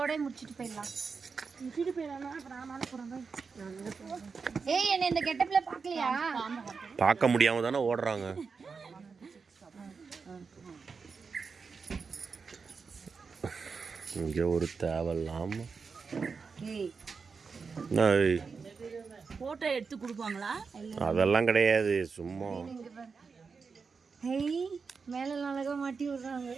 முடிச்சிட்டு போயிடலாம். ஏய், என்ன இந்த கெட்டப்ல பாக்கலையா? பார்க்க முடியாம தானே ஓடுறாங்க. இங்க ஒரு தேவையில்லாம போட்டோ எடுத்து கொடுப்பாங்களா? அதெல்லாம் கிடையாது, சும்மா மேல அழகா மாட்டி விடுறாங்க.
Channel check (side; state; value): left; quieter; 5.1 dB